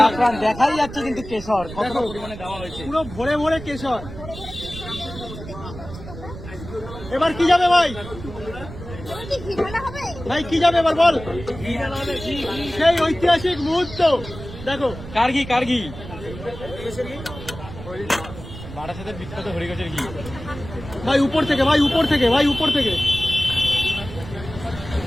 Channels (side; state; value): right; noise; rumble, 12 dB below the sound